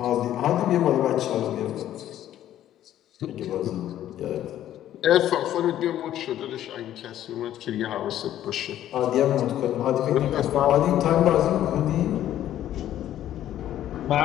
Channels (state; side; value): quieter; right; 12.1 dB